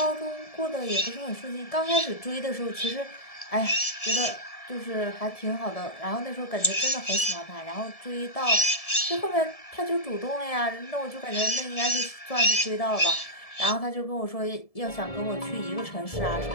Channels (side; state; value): right; late; 1.7 ms